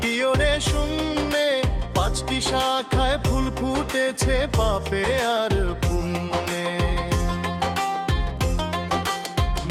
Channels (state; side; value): identical; both; correlation 1.00